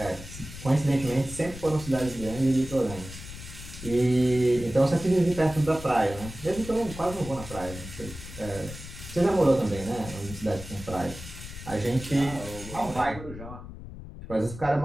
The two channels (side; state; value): left; noise; rumble, 12 dB below the sound